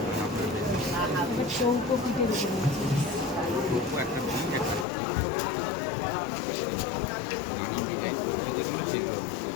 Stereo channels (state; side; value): drops out; right; at 4.9 s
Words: এবার চৌকো পিঠের উপরে